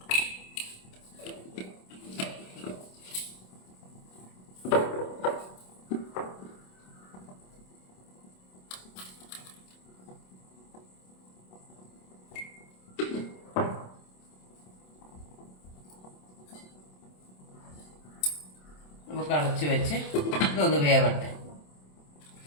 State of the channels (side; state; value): right; late; 27 ms